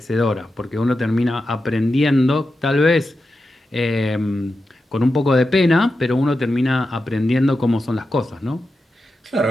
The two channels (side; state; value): both; normal; correlation 0.90